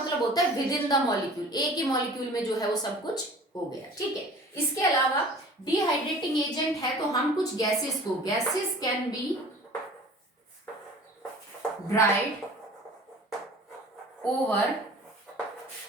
होता है विद इन द मॉलिक्यूल, एक ही मॉलिक्यूल में जो है वो सब कुछ हो गया, ठीक है। इसके अलावा डिहाइड्रेटिंग एजेंट है तो हम कुछ गैसेस को, gases can be dried over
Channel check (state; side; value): normal; both; correlation 0.45